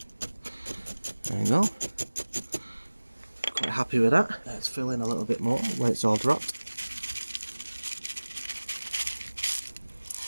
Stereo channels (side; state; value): both; inverted; correlation -1.00